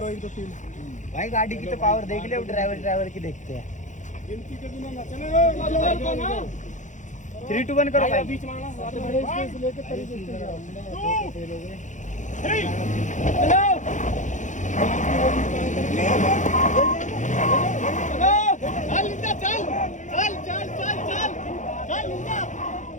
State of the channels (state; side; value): late; right; 0.36 ms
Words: एक दो तीन। भाई गाड़ी की तो पावर देख ले, अब ड्राइवर की देखते हैं। गिनती के बिना ना चलेगा, 3 2 1 करो भाई। बीच में लेके तरीके से